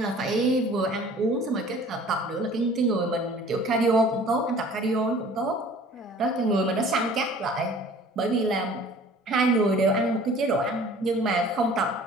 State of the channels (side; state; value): both; normal; correlation 0.49